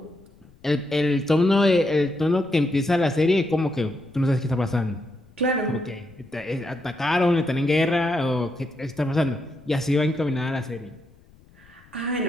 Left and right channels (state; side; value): noise; left; rumble, 28 dB below the sound